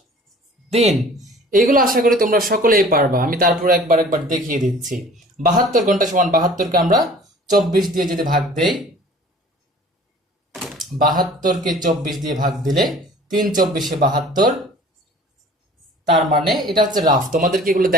দিন। এইগুলো আশা করি তোমরা সকলেই পারবা। আমি তারপর একবার দেখিয়ে দিচ্ছি। 72 ঘন্টা সমান 72-কে আমরা 24 দিয়ে যদি ভাগ দেই, 72-কে 24 দিয়ে ভাগ দিলে 3 24-এ 72, তার মানে এটা হচ্ছে রাফ, তোমাদেরকে এগুলো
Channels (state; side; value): normal; both; correlation 0.48